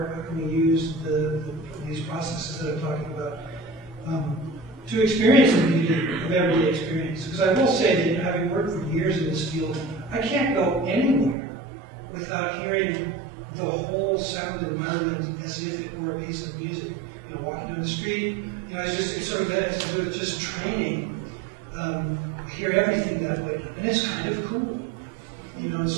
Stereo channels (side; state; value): left; drops out; at 11.4 s